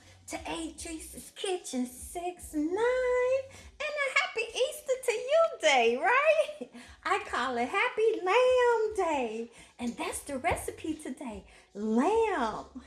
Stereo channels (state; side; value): identical; both; correlation 1.00